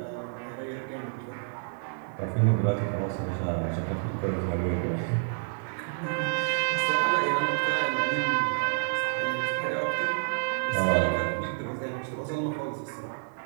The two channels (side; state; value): left; silent; 59 dB below the other